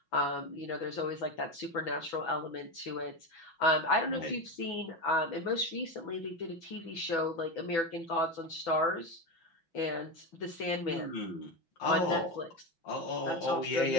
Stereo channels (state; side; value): late; right; 6.0 ms